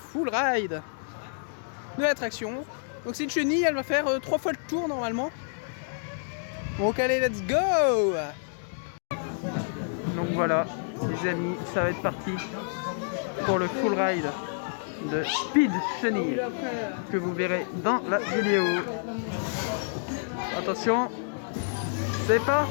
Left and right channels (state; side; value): silent; right; digital silence